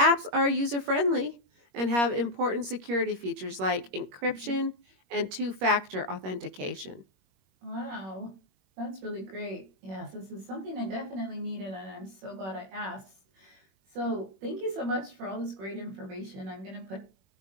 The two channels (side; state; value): left; late; 21 ms